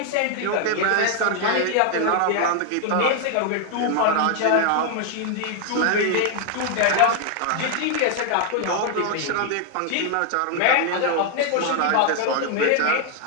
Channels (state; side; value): different; both; correlation 0.00